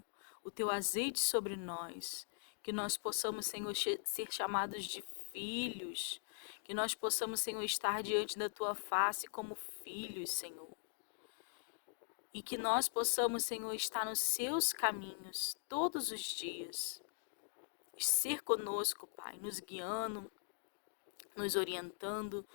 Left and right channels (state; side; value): silent; right; digital silence